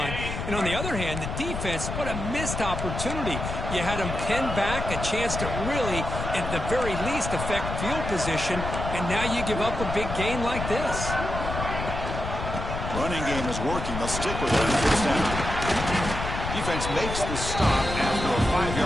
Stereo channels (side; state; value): left; noise; rumble, 5 dB below the sound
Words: And on the other hand, the defense, what a missed opportunity. You had them pinned back, a chance to really, at the very least, affect field position. And now you give up a big gain like this. Running game is working. They'll stick with it on 1st down. Defense makes the stop after a